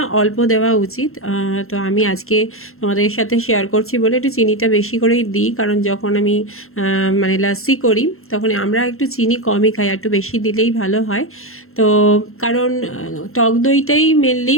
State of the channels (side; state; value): right; late; 0.62 ms